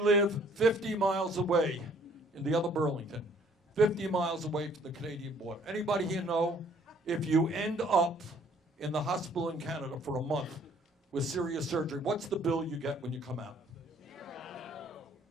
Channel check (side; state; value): both; normal; correlation 0.60